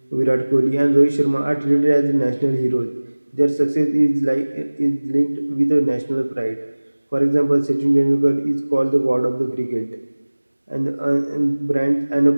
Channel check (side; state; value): both; inverted; correlation -1.00